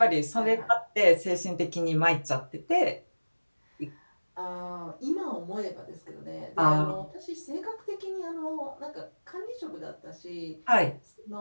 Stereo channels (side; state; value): both; inverted; correlation -1.00